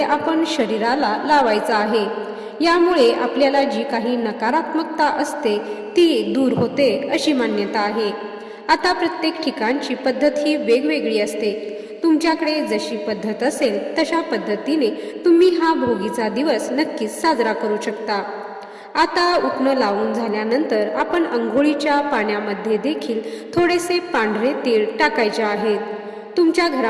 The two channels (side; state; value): both; identical; correlation 1.00